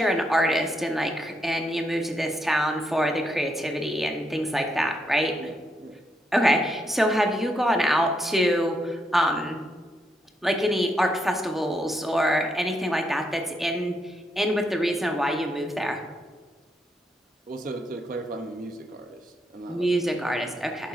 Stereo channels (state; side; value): normal; both; correlation 0.78